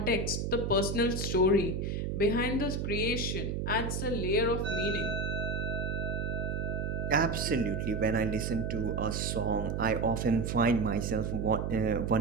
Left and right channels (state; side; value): noise; right; hum, 2 dB below the sound